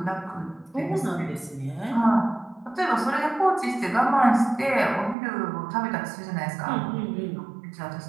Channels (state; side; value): drops out; left; at 5.2 s